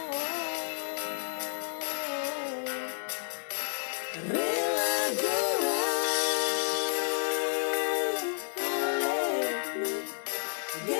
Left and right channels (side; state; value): right; silent; 57 dB below the other